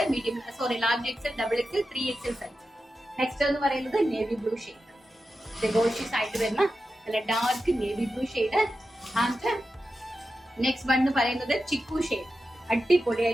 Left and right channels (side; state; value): both; normal; correlation 0.91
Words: medium large XL, XXL, 3XL size. Next എന്ന് പറയുന്നത് നേവി ബ്ലൂ ഷെയ്ഡ്, ഡെഗോഷ്യസ് ആയിട്ട് വരുന്ന നല്ല dark navy blue shade. And next one എന്ന് പറയുന്നത് ചിക്കു ഷെയ്ഡ്,